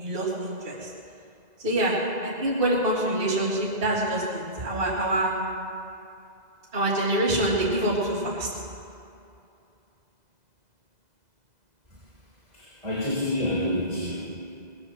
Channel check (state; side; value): late; left; 2.0 ms